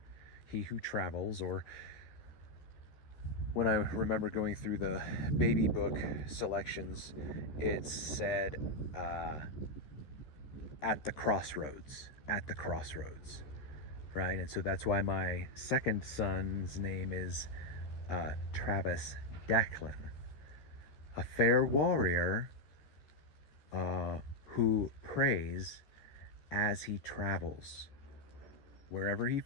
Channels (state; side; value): late; right; 14 ms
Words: he who travels, or when I remember going through the baby book selections, it said at the crossroads, right? And so that's why my second son's name is Travis Declan, a fair warrior who prays as he travels. Wherever he